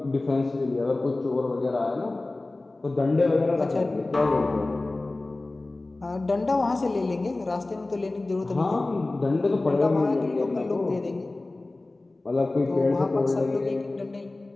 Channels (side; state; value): right; quieter; 3.0 dB